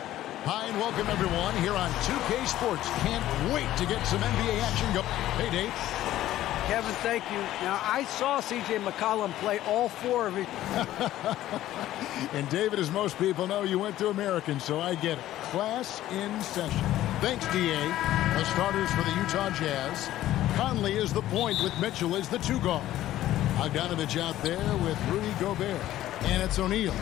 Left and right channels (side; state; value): right; quieter; 13.9 dB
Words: Hi, and welcome everyone here on 2K Sports. Can't wait to get some NBA action go. Hey, Dave. Kevin, thank you. Now, I saw C.J. McCollum play all four of his. And David, as most people know, you went to American, so I get it. Class in session. Thanks, D.A. The starters for the Utah Jazz. Conley is the point with Mitchell as the two guard. Bogdanovich out there with Rudy Gobert. And it's O'Neal